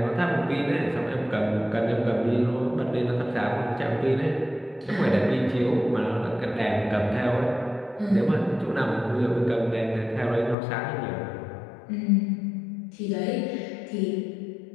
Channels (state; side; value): drops out; right; at 10.6 s